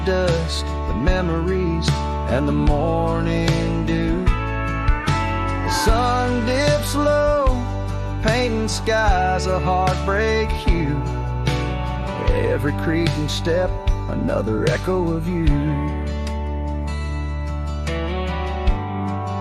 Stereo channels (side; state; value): both; identical; correlation 1.00